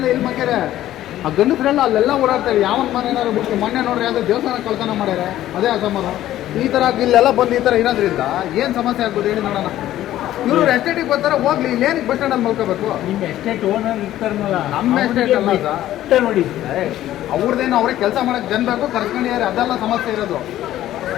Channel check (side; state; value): right; quieter; 13.5 dB